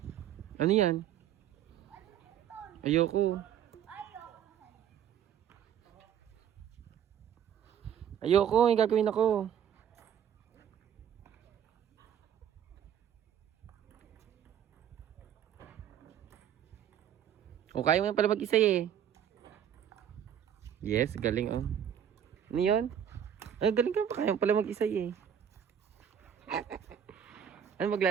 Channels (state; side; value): quieter; left; 9.3 dB